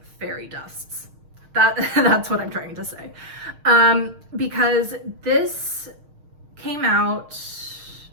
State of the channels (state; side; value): late; left; 6.5 ms